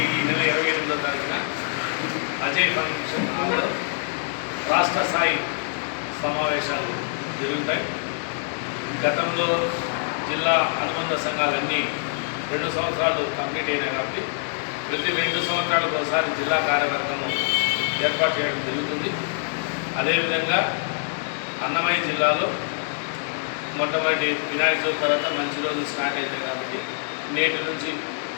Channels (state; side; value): silent; right; 62 dB below the other